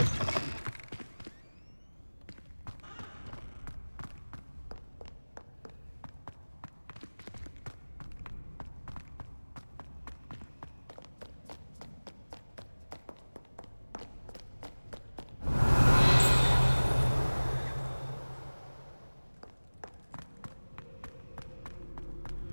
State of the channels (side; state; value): both; inverted; correlation -1.00